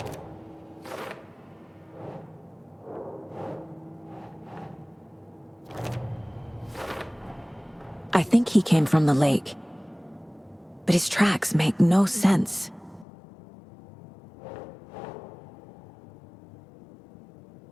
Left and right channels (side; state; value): right; drops out; at 13.1 s